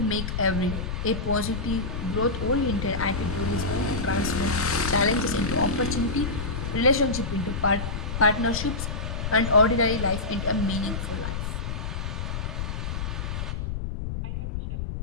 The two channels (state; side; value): noise; left; rumble, 4 dB below the sound